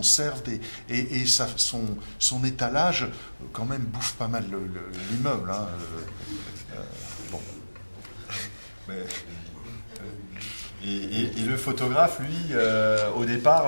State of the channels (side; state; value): both; inverted; correlation -1.00